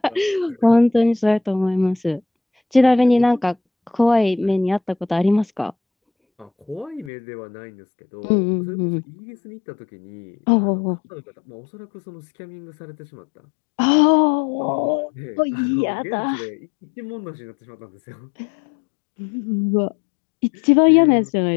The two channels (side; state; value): right; drops out; at 7.1 s